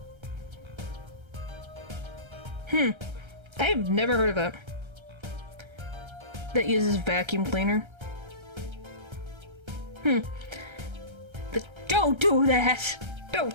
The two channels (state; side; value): late; left; 1.3 ms